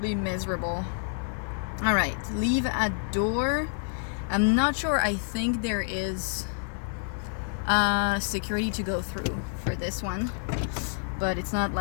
miserable. All right, leave at door. I'm not sure. I think there is security to go through for this one, but it's not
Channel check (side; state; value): right; silent; 59 dB below the other